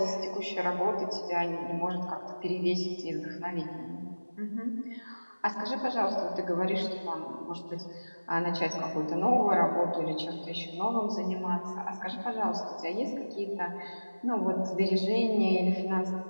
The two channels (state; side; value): inverted; both; correlation -1.00